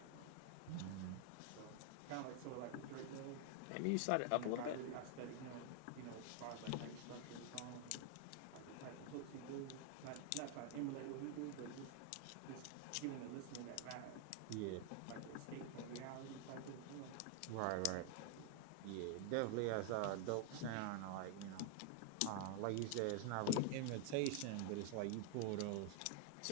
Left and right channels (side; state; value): both; different; correlation 0.00